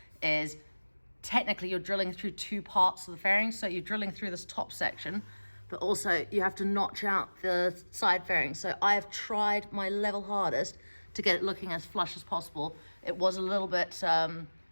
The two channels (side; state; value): both; inverted; correlation -1.00